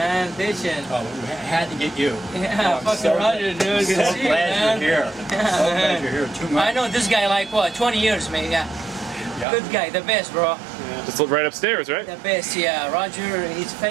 bitchin'. Oh, we had to get you. Yeah, Oh, I'm fucking so- Roger, dude. Good to So see you, glad man. you're here. So glad you're here. Too much. I know this guy like what, 20 years, man. Yeah. Yeah. Good guy, the best, bro. Just look right upstairs, right? The best, yeah. Roger, he's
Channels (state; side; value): drops out; left; at 9.5 s